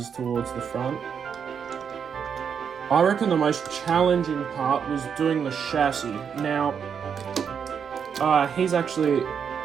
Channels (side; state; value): left; quieter; 7.1 dB